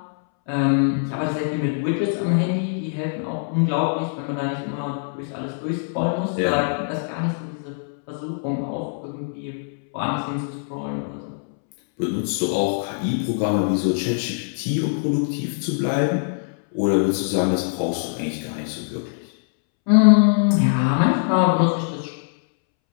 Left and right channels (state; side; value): silent; right; 64 dB below the other